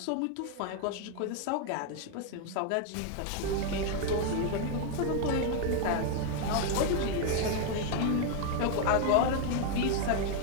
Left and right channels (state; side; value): different; both; correlation 0.01